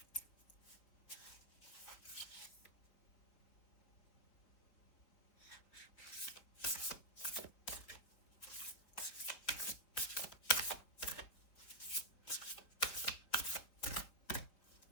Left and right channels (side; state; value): right; late; 4.5 ms